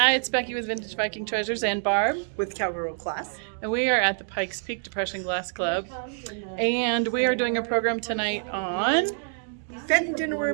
it's Becky with Vintage Viking Treasures and Barb with Cowgirl Class. And we are at the Pikes Peak Depression Glass Club. And we are doing a program tonight on Fenton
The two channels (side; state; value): left; silent; digital silence